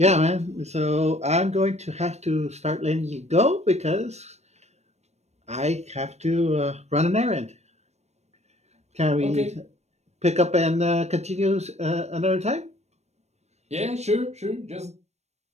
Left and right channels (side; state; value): left; late; 0.32 ms